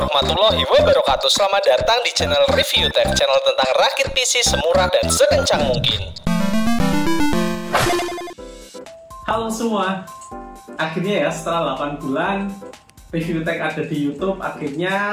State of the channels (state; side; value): identical; both; correlation 1.00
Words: wabarakatuh. Selamat datang di channel Review Tech, channel tentang rakit PC semurah dan sekencang mungkin. Halo semua, akhirnya ya setelah 8 bulan Review Tech ada di YouTube,